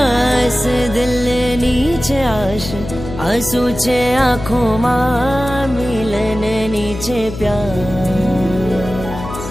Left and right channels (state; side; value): noise; left; hum, 10 dB below the sound